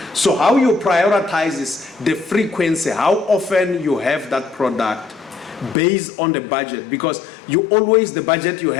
So how you prioritize is the frequency, how often you have that product based on the budget, because you always, the budget you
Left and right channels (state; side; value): drops out; right; at 5.8 s